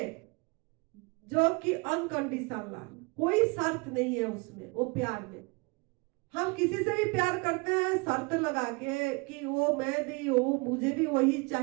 जो कि अनकंडीशनल, कोई शर्त नहीं है उसमें, वो प्यार में। हम किसी से भी प्यार करते हैं शर्त लगा के कि वो मैं दी, वो मुझे भी वही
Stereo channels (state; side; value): quieter; left; 28.9 dB